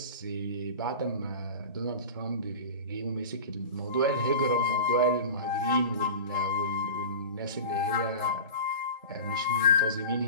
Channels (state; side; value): inverted; both; correlation -0.33